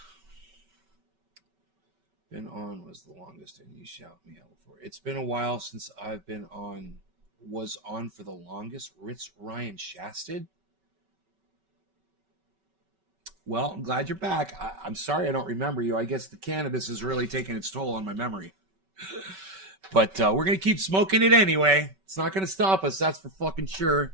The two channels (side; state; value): left; late; 5.2 ms